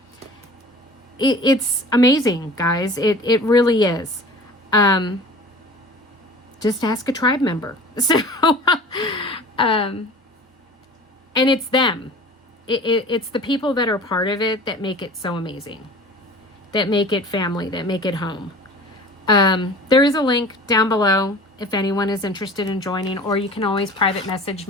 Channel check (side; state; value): both; normal; correlation 0.41